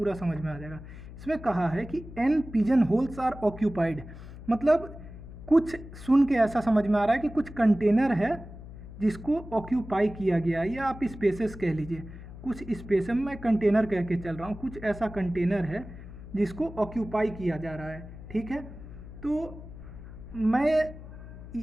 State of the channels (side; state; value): left; noise; hum, 14 dB below the sound